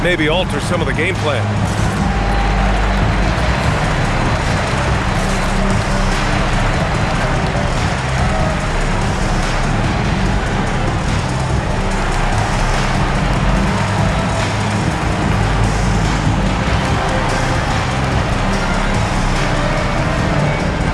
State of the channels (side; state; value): both; identical; correlation 1.00